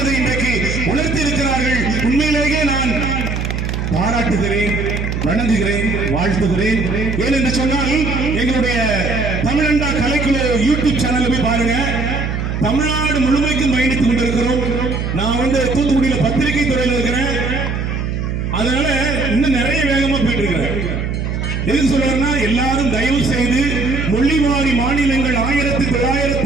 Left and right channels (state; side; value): noise; right; hum, 2 dB below the sound